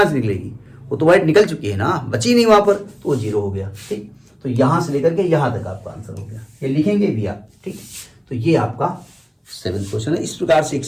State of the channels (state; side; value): identical; both; correlation 1.00